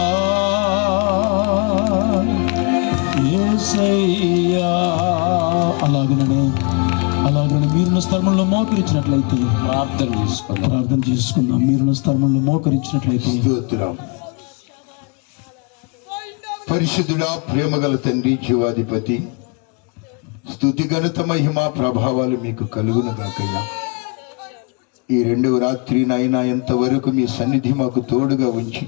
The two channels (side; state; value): right; quieter; 33.8 dB